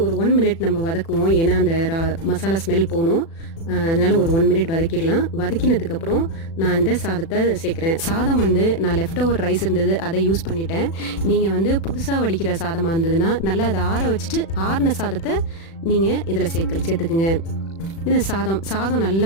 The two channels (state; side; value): late; right; 36 ms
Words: ஒரு 1 மினிட் நம்ம வதக்குவோம், ஏன்னா அந்த மசாலா ஸ்மெல் போகணும். அதனால ஒரு 1 மினிட் வதக்கிடலாம். வதக்கினதுக்கப்புறம் நான் இந்த சாதத்தை சேர்க்குறேன். சாதம் வந்து நான் லெஃப்ட் ஓவர் ரைஸ் இருந்தது, அதை யூஸ் பண்ணிட்டேன். நீங்கள் வந்து புதுசாக வடிக்கிற சாதமாக இருந்ததுன்னா நல்லா அதை ஆற வச்சுட்டு ஆறின சாதத்தை நீங்கள் இதில் சேர்த்துக்குங்க. இது சாதம்